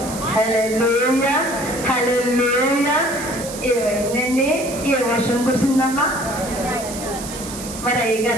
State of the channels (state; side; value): noise; right; hiss, 11 dB below the sound